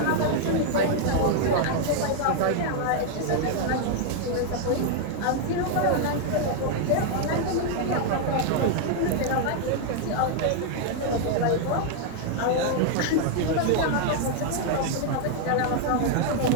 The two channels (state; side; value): different; both; correlation 0.00